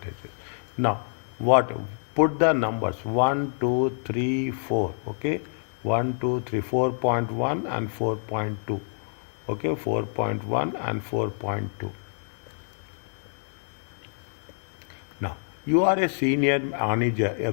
Now, put the numbers 1, 2, 3, 4. Okay, 1, 2, 3, 4.1 and 4.2. Okay, 4.1 and 4.2. Now, you are a senior manager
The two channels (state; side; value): silent; right; 60 dB below the other